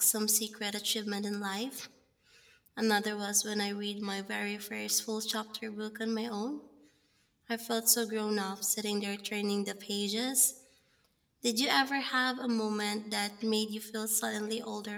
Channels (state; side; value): identical; both; correlation 1.00